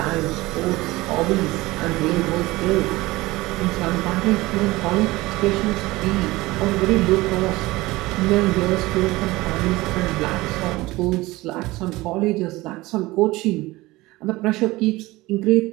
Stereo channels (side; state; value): left; quieter; 19.9 dB